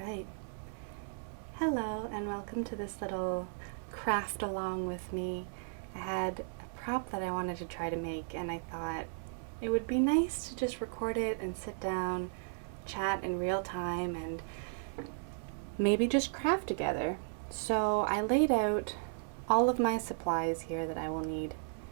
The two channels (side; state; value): left; silent; digital silence